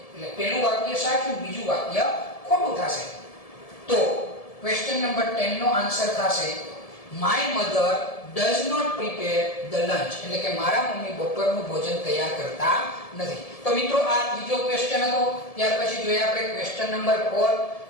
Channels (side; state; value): right; late; 1.7 ms